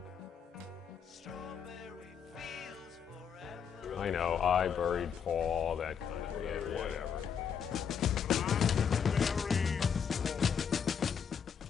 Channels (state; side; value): quieter; right; 7.3 dB